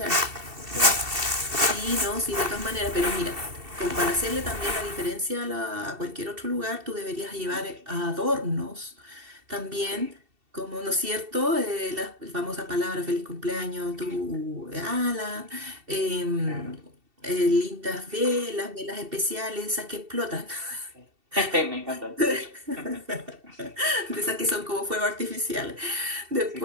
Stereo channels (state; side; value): late; left; 2.7 ms